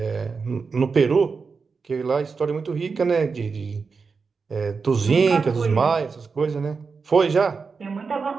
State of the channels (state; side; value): quieter; left; 5.0 dB